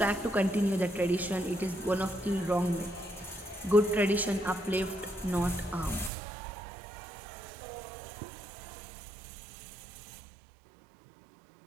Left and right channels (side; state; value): left; drops out; at 6.1 s